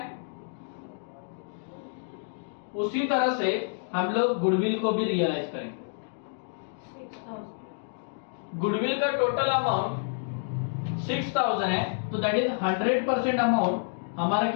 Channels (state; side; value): silent; right; digital silence